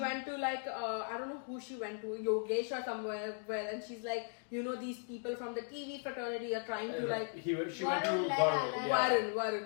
went to like I don't know who she went to, Yogesh or somewhere, and she's like, you know, these people from the TV fraternity are trying to like. She went to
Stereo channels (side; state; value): right; silent; 53 dB below the other